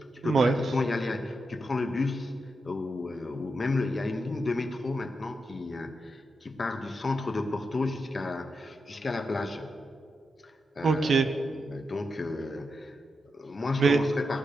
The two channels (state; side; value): normal; both; correlation 0.86